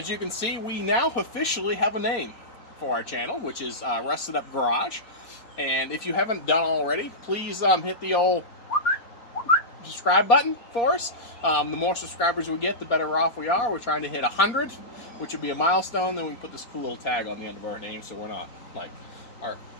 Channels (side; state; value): right; late; 4.3 ms